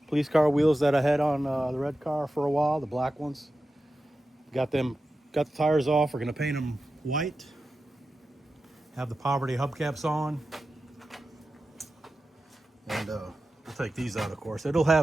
police car wheels that I had on the red car for a while, the black ones. Got the tires off. We're gonna paint them white. Have the poverty hubcaps on, and we'll take these out, of course. It'll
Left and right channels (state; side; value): normal; both; correlation 0.92